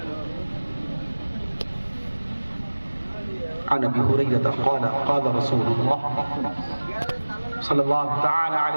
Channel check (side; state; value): both; inverted; correlation -1.00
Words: عن أبي هريرة قال قال رسول الله صلى الله تعالى